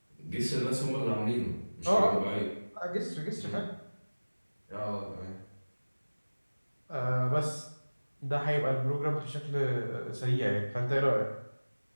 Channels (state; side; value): inverted; both; correlation -1.00